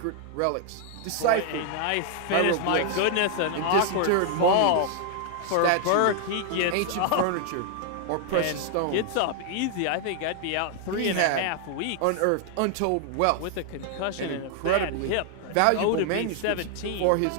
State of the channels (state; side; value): different; both; correlation 0.00